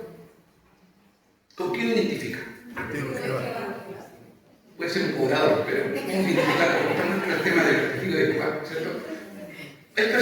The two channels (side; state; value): both; identical; correlation 1.00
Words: ¿Con qué lo identifica? Puede ser un cobrador, pero ¿cómo identificarlo? Estamos en el tema del testigo de Jehová, ¿cierto? Hay